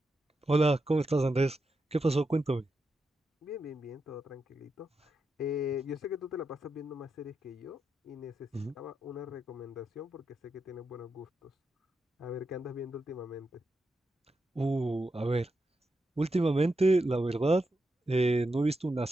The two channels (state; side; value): normal; both; correlation 0.86